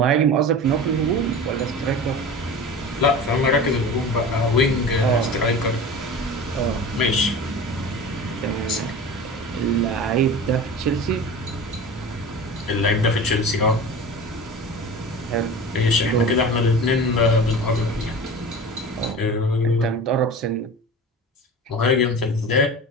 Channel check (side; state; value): both; normal; correlation 0.34